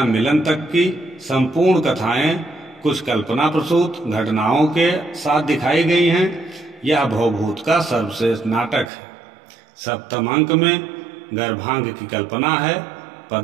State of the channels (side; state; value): left; drops out; at 8.9 s